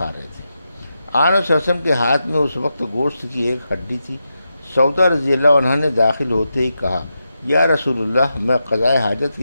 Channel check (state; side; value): inverted; both; correlation -0.87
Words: رہے تھے۔ آن صلی اللہ علیہ وسلم کے ہاتھ میں اس وقت گوشت کی ایک ہڈی تھی۔ سودا رضی اللہ عنہ نے داخل ہوتے ہی کہا، یا رسول اللہ، میں قضاء حاجت